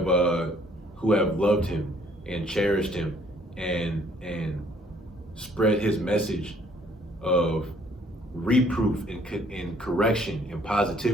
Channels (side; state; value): both; normal; correlation 0.62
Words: loved him and cherished him and spread his message of reproof and correction and